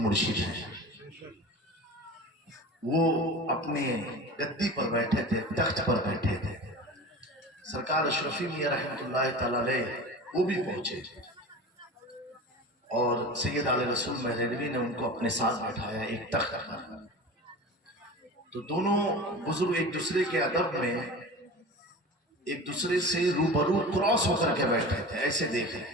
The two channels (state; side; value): normal; both; correlation 0.34